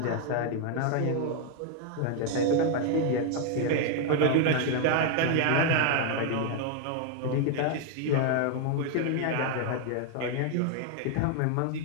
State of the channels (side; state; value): both; different; correlation 0.00